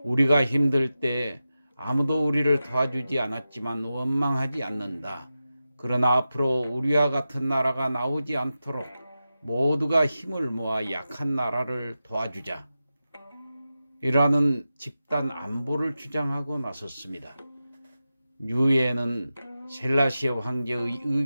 우리가 힘들 때 아무도 우리를 도와주지 않았지만 원망하지 않는다. 그러나 앞으로 우리와 같은 나라가 나오지 않도록 모두가 힘을 모아 약한 나라를 도와주자. 이라는 집단 안보를 주장하고 나섰습니다. 유엔은 셀라시에 황제의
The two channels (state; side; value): inverted; both; correlation -0.92